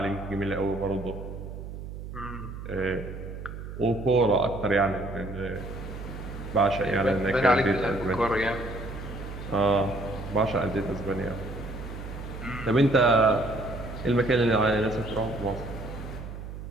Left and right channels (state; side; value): noise; right; hum, 10 dB below the sound